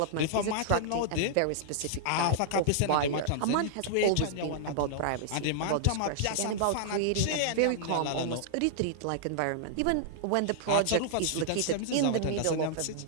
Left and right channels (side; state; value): both; different; correlation -0.01